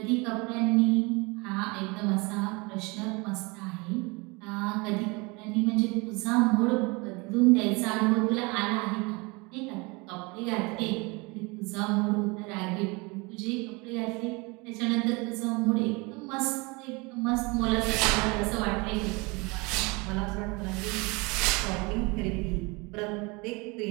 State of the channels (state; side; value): quieter; left; 27.1 dB